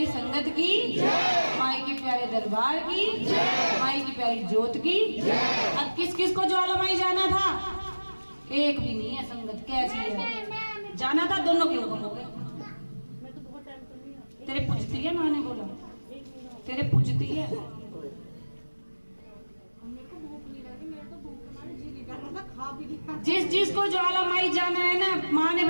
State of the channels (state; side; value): inverted; both; correlation -1.00